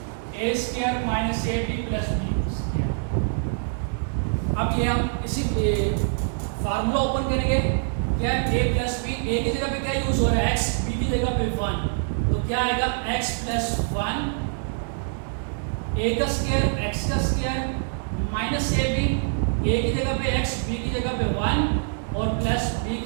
a square minus ab plus b। अब ये हम इसी फार्मूला ओपन करेंगे, क्या है, a प्लस बी, a की जगह पे क्या यूज हो रहा है, x, b की जगह पे 1, तो क्या आएगा, x प्लस 1, a का स्क्वायर, x का स्क्वायर माइनस ab, a की जगह पे x, b की जगह पे 1 और प्लस b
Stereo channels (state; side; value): silent; left; digital silence